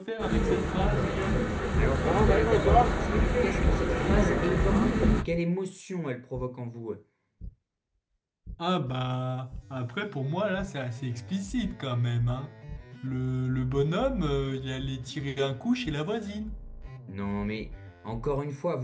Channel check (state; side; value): identical; both; correlation 1.00